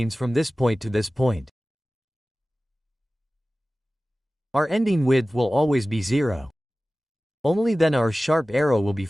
from this point to this point. Our ending width will always be 0. Only then our sharp arrow will be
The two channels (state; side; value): normal; both; correlation 0.97